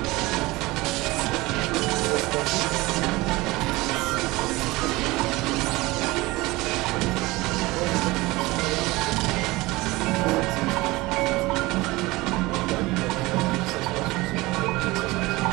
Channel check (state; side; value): quieter; left; 21.0 dB